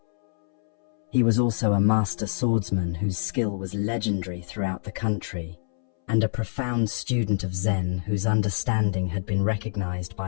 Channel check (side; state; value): right; silent; 61 dB below the other